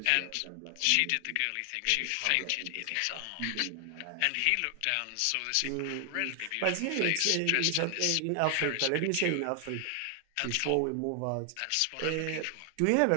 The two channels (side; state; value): both; different; correlation 0.00